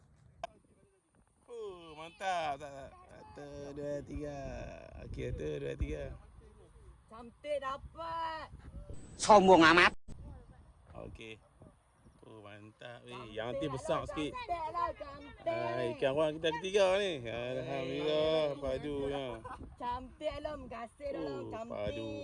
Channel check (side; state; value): both; identical; correlation 1.00